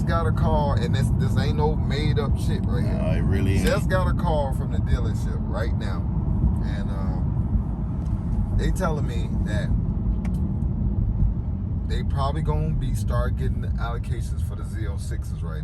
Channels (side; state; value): both; identical; correlation 1.00